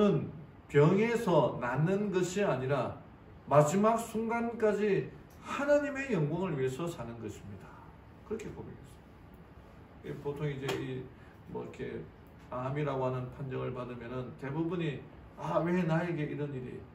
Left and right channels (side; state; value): both; identical; correlation 1.00